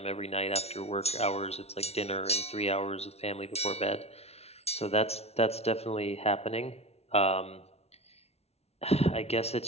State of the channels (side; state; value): right; late; 0.31 ms